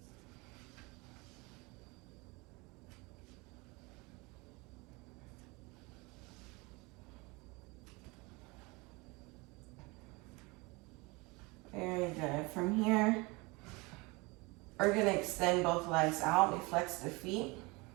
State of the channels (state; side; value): quieter; left; 25.7 dB